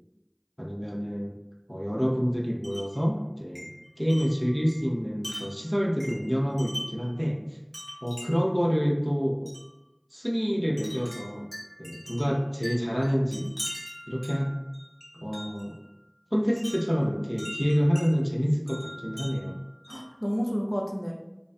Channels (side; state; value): both; identical; correlation 1.00